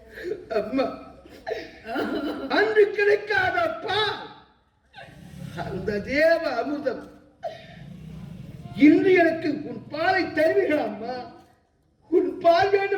அம்மா, அன்று கிடைக்காதப்பா அந்த தேவ அமிர்தம் இன்று எனக்கு உன் பாலை தருவீர்கள் அம்மா. உன் பால்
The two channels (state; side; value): identical; both; correlation 1.00